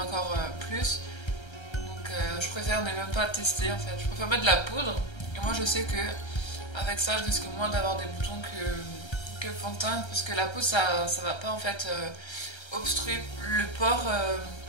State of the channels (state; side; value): late; right; 1.3 ms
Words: plus. Donc je préfère ne même pas tester en fait. Je préfère mettre de la poudre. Et moi je sais que avec ça je risque moins d'avoir des boutons que le fond de teint. Parce que la poudre ça va pas en fait obstruer le pore